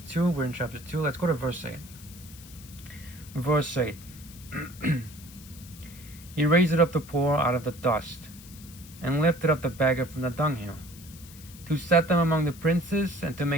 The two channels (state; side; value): noise; left; hiss, 19 dB below the sound